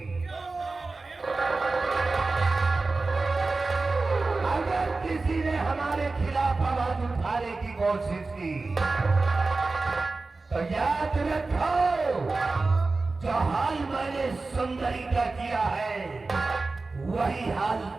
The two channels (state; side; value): quieter; left; 3.6 dB